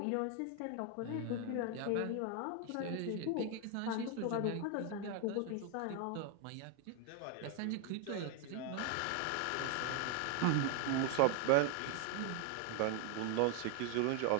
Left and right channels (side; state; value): both; different; correlation 0.00